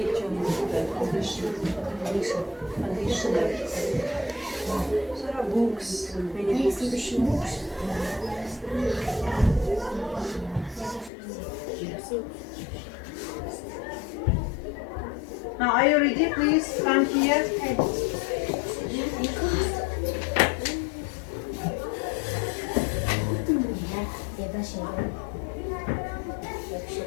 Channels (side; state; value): right; drops out; at 11.1 s